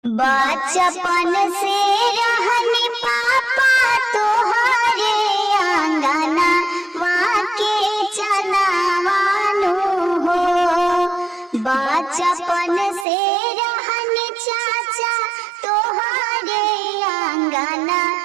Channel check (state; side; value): drops out; left; at 13.1 s